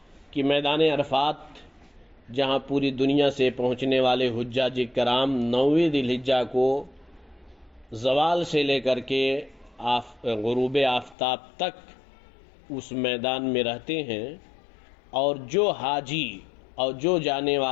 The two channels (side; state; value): right; drops out; at 11.2 s